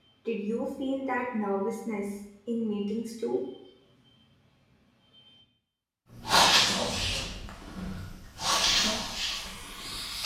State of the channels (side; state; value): both; identical; correlation 1.00